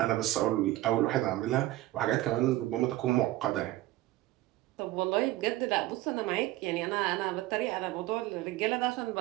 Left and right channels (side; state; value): left; quieter; 16.7 dB